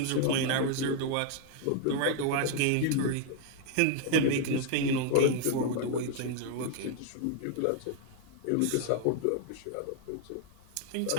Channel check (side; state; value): both; different; correlation 0.00